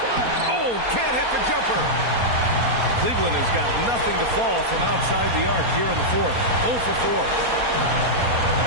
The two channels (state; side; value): late; left; 4.3 ms